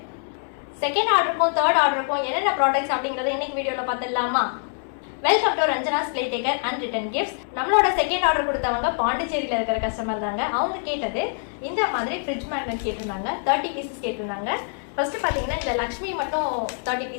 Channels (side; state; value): right; silent; 62 dB below the other